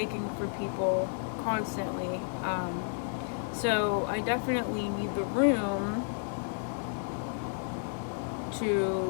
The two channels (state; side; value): silent; right; digital silence